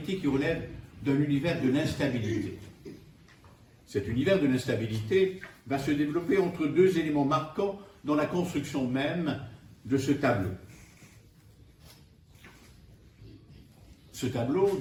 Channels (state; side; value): identical; both; correlation 1.00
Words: qui relève d'un univers de l'instabilité. Cet univers de l'instabilité va se développer entre deux éléments marquants dans la construction même de ce tableau. Ce tableau,